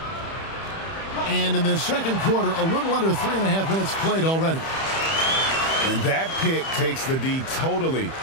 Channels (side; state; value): right; late; 31 ms